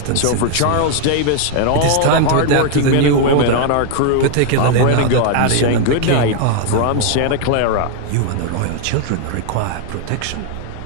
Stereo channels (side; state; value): both; different; correlation 0.00